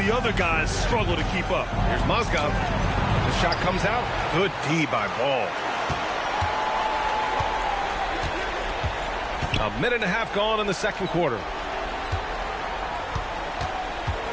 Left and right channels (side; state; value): both; identical; correlation 1.00